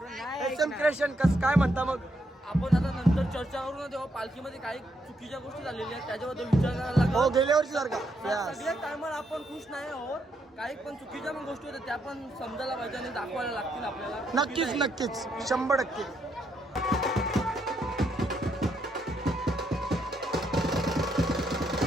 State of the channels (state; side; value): normal; both; correlation 0.77